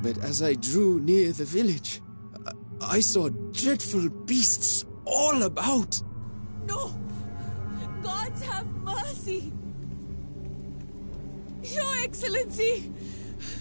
But as I drew near the village, I saw dreadful beasts all about. No! Gods have mercy! Your Excellency!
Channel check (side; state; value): both; inverted; correlation -1.00